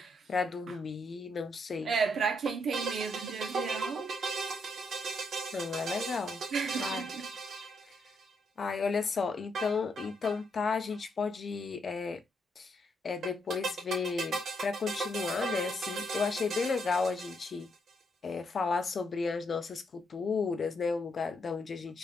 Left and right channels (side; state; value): both; normal; correlation 0.77